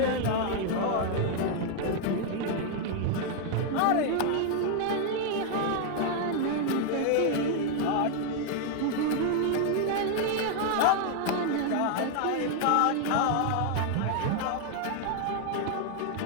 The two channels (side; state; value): both; different; correlation 0.00